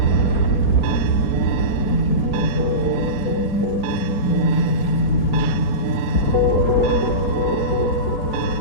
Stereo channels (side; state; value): right; late; 4.3 ms